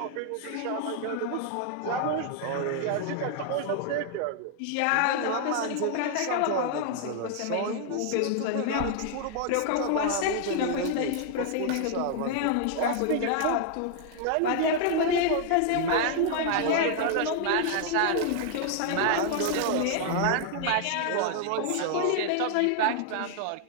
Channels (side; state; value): both; different; correlation 0.00